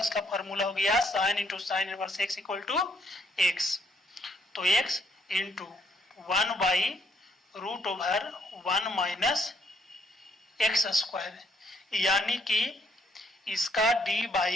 फॉर्मूला हो गया sine into sine inverse x equal to x. तो x into 1 by root over 1 minus x square, यानी कि इसका d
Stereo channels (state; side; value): normal; both; correlation 0.69